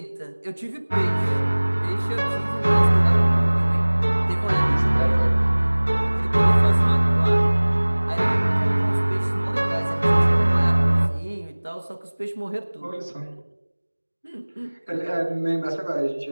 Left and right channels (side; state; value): both; inverted; correlation -1.00